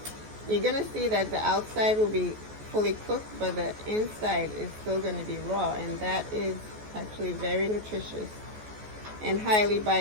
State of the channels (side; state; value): left; late; 14 ms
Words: You're gonna see that the outside will be fully cooked, but the inside is still gonna be raw, and that is actually very nutritious and highly